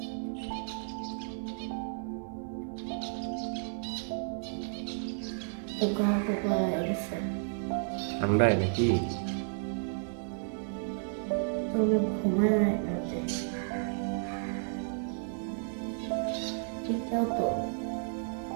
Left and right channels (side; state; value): left; silent; 56 dB below the other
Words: পোকা পোকা হয়ে গেছে। ঠান্ডায় নাকি? তবে ঘুমায় না রাতে। এটাও তো